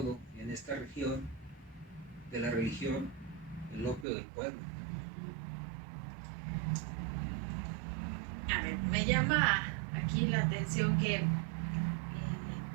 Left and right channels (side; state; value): left; drops out; at 4.0 s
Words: en esta región de la religión, el opio del pueblo. A ver, me llama aquí la atención que